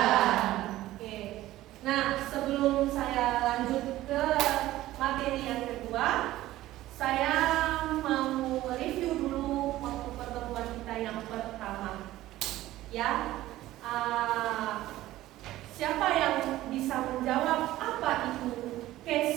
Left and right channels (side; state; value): left; quieter; 15.6 dB